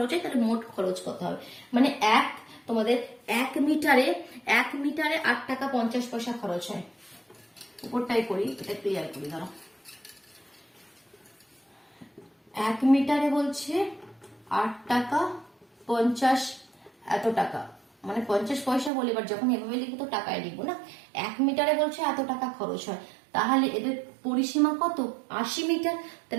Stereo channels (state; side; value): drops out; left; at 18.9 s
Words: হয় তাহলে মোট খরচ কত হবে, মানে তোমাদের 1 মিটারে 8 টাকা 50 পয়সা খরচ হয়। উপরটাই করি, এটা ক্লিয়ার করি দাঁড়াও। 1 মিটারে বলছে 8 টাকা 50 এত টাকা, মানে 50 পয়সা বলে, এবার যখন এভাবে লিখবো তো টাকায় লিখবো না। 1 মিটারে বলছে এত টাকা খরচ হয়, তাহলে এদের পরিসীমা কত, 80 মিটার।